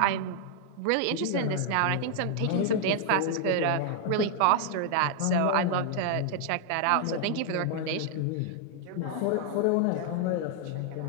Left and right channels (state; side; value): different; both; correlation 0.00